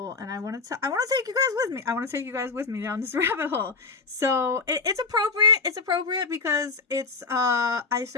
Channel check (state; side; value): quieter; right; 4.3 dB